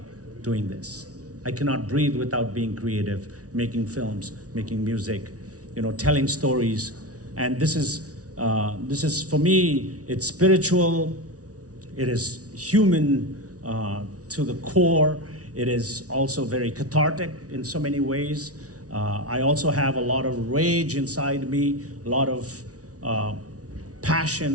doing this. I cannot breathe without being creative, making films, making music, telling stories. And this is for me, it's spiritual, it is human to the core. It is also very cathartic in so many ways. I also have a lot of rage inside me, a lot of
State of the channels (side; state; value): left; late; 0.67 ms